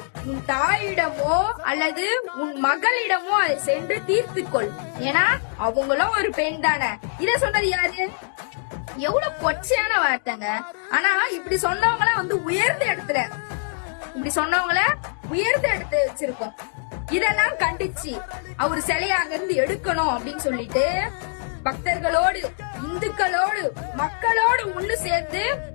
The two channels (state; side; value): silent; right; digital silence